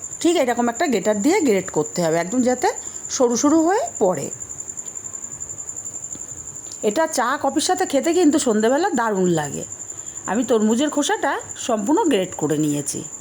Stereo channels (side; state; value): both; identical; correlation 1.00